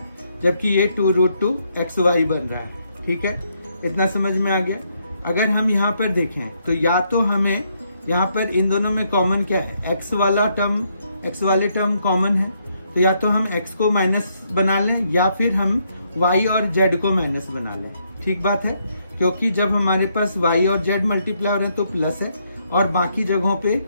जबकि ये 2√2xy बन रहा है, ठीक है। इतना समझ में आ गया। अगर हम यहाँ पर देखें तो या तो हमें यहाँ पर इन दोनों में कॉमन क्या है, x वाले टर्म कॉमन है, तो या तो हम x को माइनस बना लें या फिर हम y और z को माइनस बना लें। ठीक बात है, क्योंकि जब हमारे पास y और z मल्टीप्लाई हो रहे हैं तो प्लस है, और बाकी जगहों पे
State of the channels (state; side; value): inverted; both; correlation -0.74